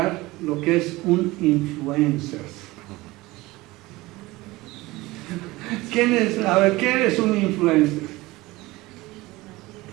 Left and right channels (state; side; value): quieter; left; 20.2 dB